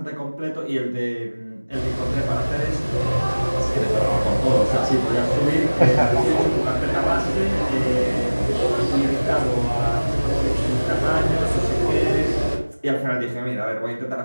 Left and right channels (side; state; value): both; inverted; correlation -1.00